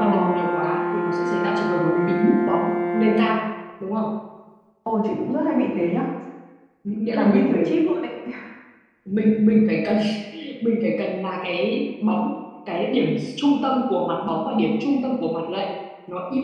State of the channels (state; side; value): identical; both; correlation 1.00